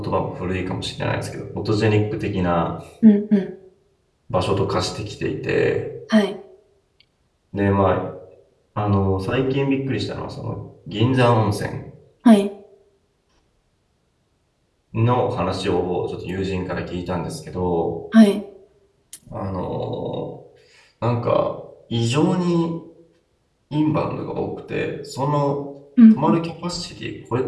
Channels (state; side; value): identical; both; correlation 1.00